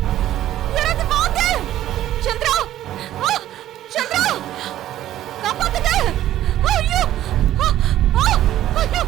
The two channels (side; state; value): left; quieter; 13.0 dB